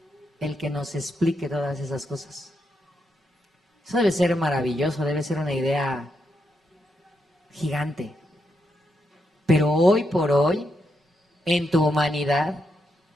el que nos explique todas esas cosas. Eso debe ser maravilloso, debe ser una idea gigante. Pero hoy por hoy, en tu humanidad,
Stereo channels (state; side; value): normal; both; correlation 0.81